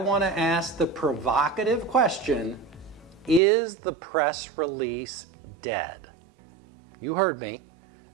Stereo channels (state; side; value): drops out; left; at 3.4 s